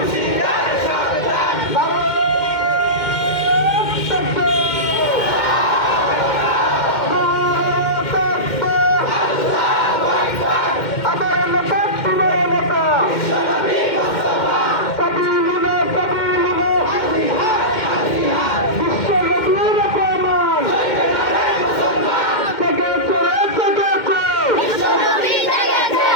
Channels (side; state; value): right; late; 2.1 ms